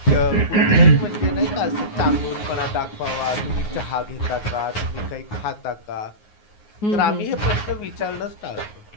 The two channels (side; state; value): right; late; 9.5 ms